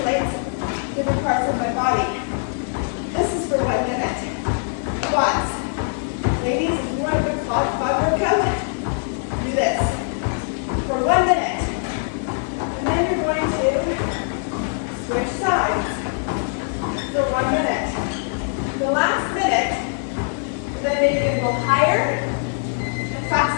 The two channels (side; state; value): right; silent; 64 dB below the other